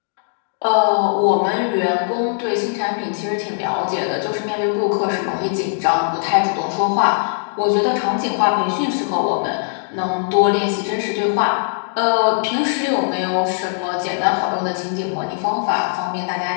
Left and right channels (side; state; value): right; silent; digital silence